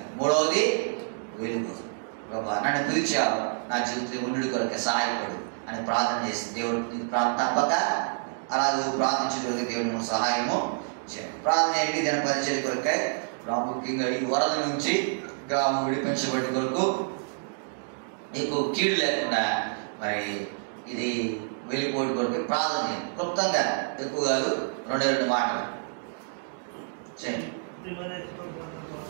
3వది వెలుగు. ప్రభా నన్ను పిలిచావు, నా జీవితంలో ఉండి కొరకే సహాయపడు అని ప్రార్థన చేసి దేవుడు తప్పక అలాగే ప్రార్థించగలిగే దేవుడు సహాయము చేయండి. ప్రార్థన ఏంటి? దీని పరిచయ కొరకై ప్రాముఖ్యంగా ఈ వరద నుంచి గ్రామం విడిపించబడి కొరకు నీకు కీడు లేకుండా మరి ఇది వెళ్ళిపోవడం కొరకు ప్రార్థన చేయండి. క్లుప్తంగా ఎక్కువ కాదు, 2 మాటలు చేయండి.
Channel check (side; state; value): left; silent; digital silence